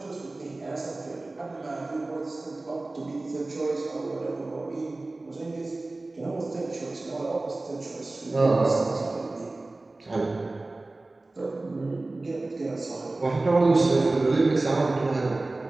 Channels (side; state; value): left; quieter; 3.0 dB